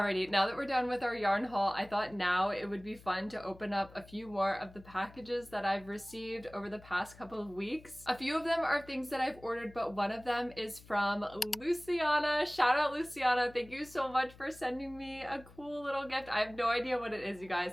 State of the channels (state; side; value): noise; left; hum, 21 dB below the sound